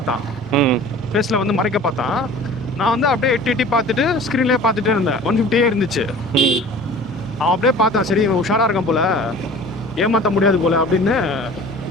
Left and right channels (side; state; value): both; normal; correlation 0.43